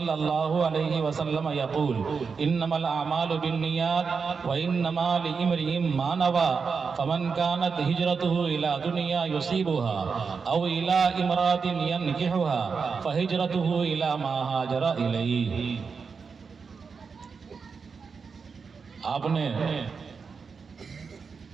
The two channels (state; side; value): quieter; left; 5.4 dB